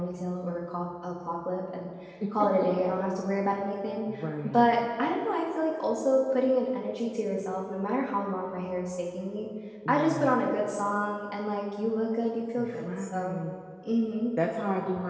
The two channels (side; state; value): both; identical; correlation 1.00